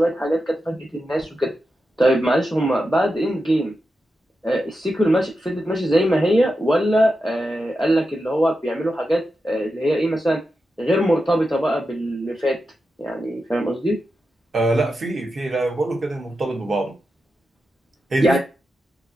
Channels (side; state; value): both; normal; correlation 0.89